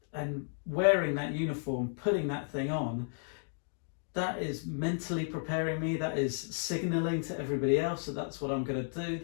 wearing that uniform, putting that thing on, that is mentally preparing me, that is signalling to everybody else that that's what I'm going to do,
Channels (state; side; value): silent; right; digital silence